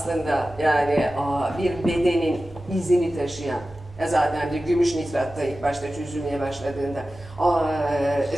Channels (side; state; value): both; normal; correlation 0.95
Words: yani bir bedenin izini taşıyan. Zaten de gümüş nitratta ilk başta çözülmeye başladığında